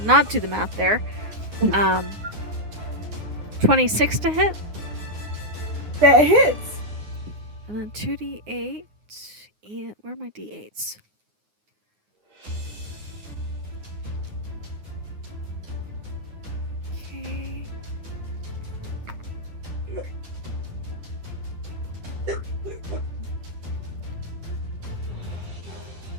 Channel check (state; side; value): late; left; 9.6 ms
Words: not do the math there. 26 to hit. That hits. And then 2d8. And where are my d8s? Okay.